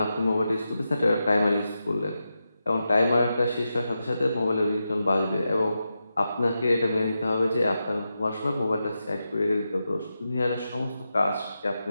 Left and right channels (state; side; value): inverted; both; correlation -0.89